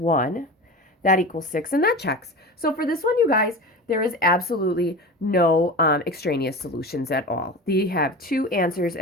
That equals 6, and that checks. So for this one, you guys, there is absolutely no extraneous solutions at all. They have two answers,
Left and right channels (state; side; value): normal; both; correlation 0.30